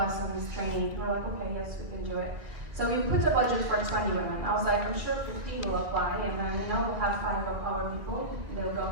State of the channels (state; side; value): late; left; 1.7 ms